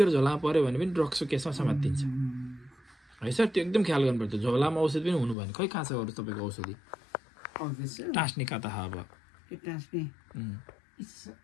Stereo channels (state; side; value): drops out; right; at 5.4 s